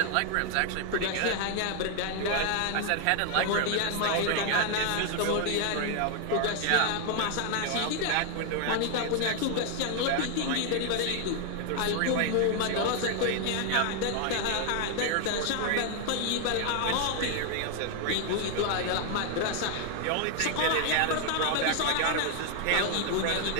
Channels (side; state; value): both; different; correlation 0.00